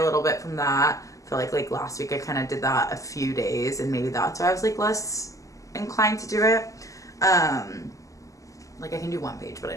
little bit from that. I feel like last week I kind of did that a few days, and maybe that's why I was like less inclined to do it. Like I can do one page, but I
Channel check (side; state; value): right; late; 0.16 ms